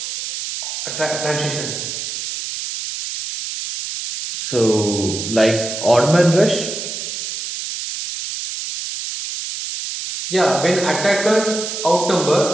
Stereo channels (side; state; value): right; noise; hiss, 6 dB below the sound